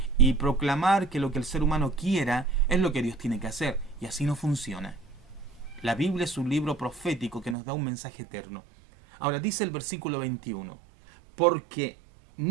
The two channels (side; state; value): left; drops out; at 7.6 s